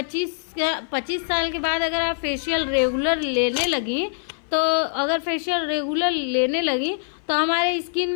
साल के बाद अगर आप फेशियल रेगुलर लेने लगी, तो अगर फेशियल रेगुलर लेने लगी तो हमारे स्किन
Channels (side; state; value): right; silent; 58 dB below the other